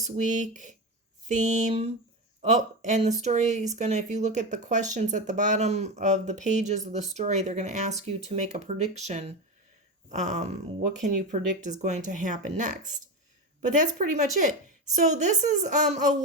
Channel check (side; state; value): both; normal; correlation 0.19